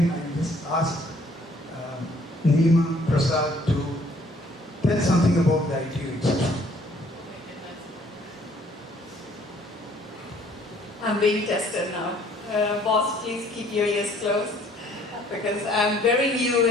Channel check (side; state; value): both; normal; correlation 0.60